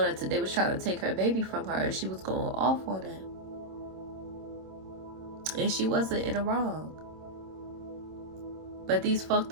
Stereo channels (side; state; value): left; late; 26 ms